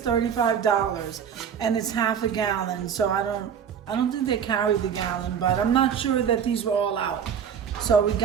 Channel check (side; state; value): left; quieter; 7.8 dB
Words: $35, and it's half a gallon. So I don't think they carry the gallon, but I'm not sure that these were all out. So we